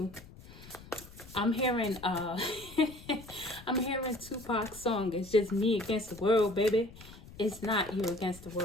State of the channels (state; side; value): noise; left; rumble, 18 dB below the sound